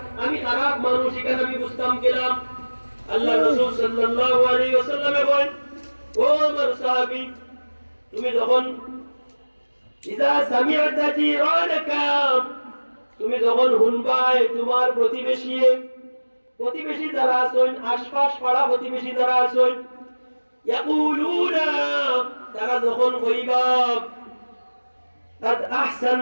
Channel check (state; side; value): inverted; both; correlation -1.00